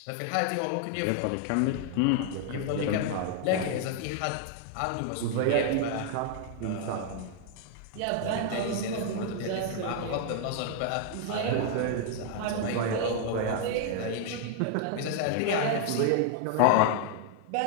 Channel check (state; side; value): different; both; correlation 0.00